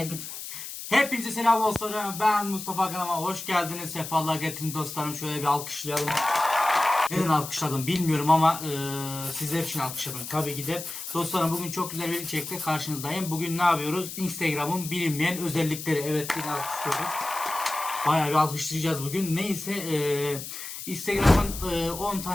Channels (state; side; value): noise; left; hiss, 9 dB below the sound